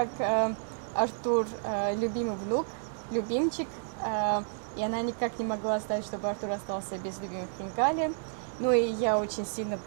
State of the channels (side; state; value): left; silent; digital silence